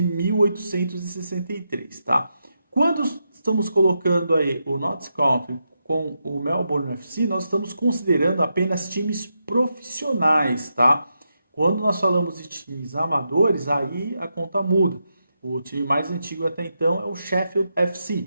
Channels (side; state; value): both; inverted; correlation -0.85